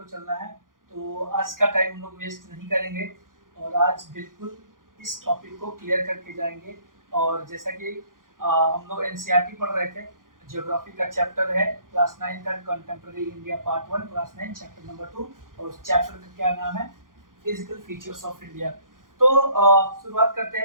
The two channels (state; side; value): late; left; 0.90 ms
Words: चलना है। तो आज का टाइम हम लोग वेस्ट नहीं करेंगे और आज बिल्कुल इस टॉपिक को क्लियर करके जाएंगे। और जैसा कि हम लोग एनसीईआरटी पढ़ रहे थे, ज्योग्राफी का चैप्टर है क्लास 9 का contemporary India part 1 class 9 chapter number 2 और उस चैप्टर का क्या नाम है, फिजिकल फीचर्स ऑफ इंडिया। तो शुरुआत करते